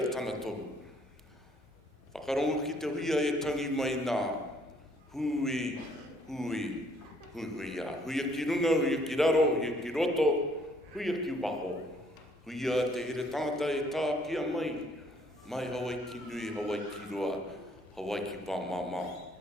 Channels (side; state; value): both; normal; correlation 0.64